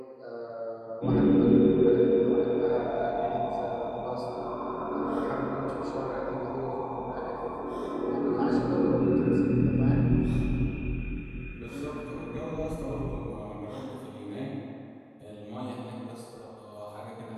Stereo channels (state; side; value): identical; both; correlation 1.00